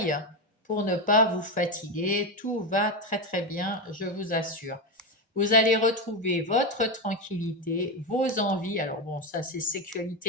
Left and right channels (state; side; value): normal; both; correlation 0.12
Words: pour ne pas vous fatiguer. Tout va très très bien, je vous assure. Vous allez retrouver votre tranquillité, vos envies. Alors bon, ça c'est